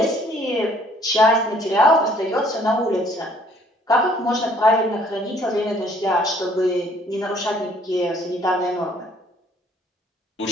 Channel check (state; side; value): normal; both; correlation 0.60